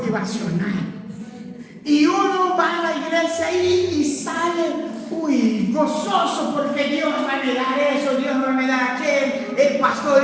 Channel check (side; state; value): both; identical; correlation 1.00